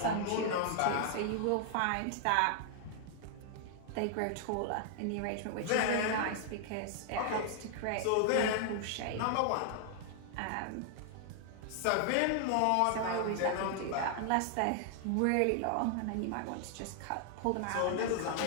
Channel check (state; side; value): different; both; correlation 0.00